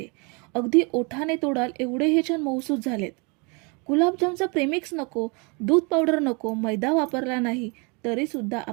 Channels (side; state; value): left; quieter; 31.8 dB